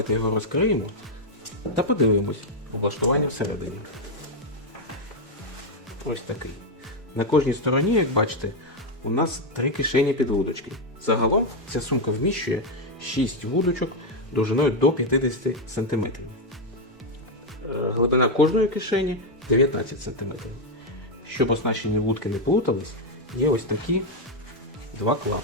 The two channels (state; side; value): normal; both; correlation 0.03